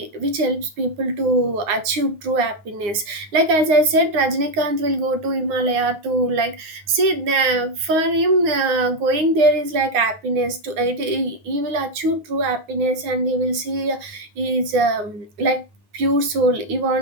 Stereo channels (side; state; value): left; late; 9.5 ms